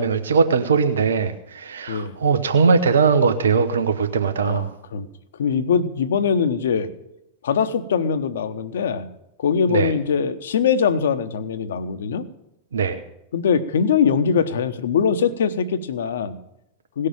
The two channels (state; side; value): inverted; both; correlation -0.54